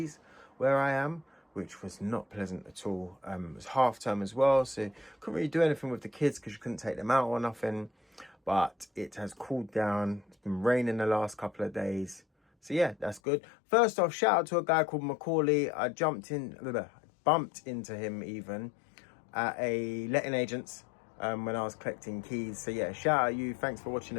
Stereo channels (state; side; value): drops out; right; at 13.2 s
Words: where I am, which was not pleasant at all. It was half term as well, so couldn't really do anything with the kids because you couldn't take them out or nothing. But it has cooled down. It's been raining the last couple of days. So yeah, that's good. First off, shout out to a guy called Macaulay. I bumped into him even at a letting agent's when I was collecting keys. So yeah, shout out you. Thanks for watching